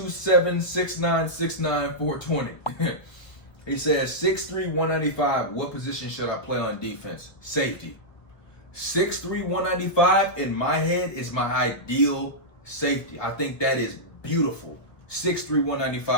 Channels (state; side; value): late; right; 1.5 ms